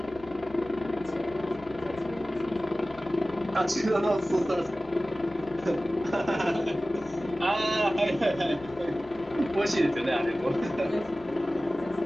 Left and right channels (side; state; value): both; normal; correlation 0.96